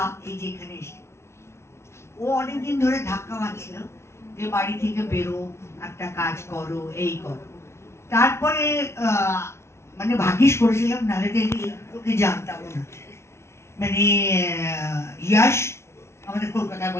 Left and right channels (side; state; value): right; late; 0.13 ms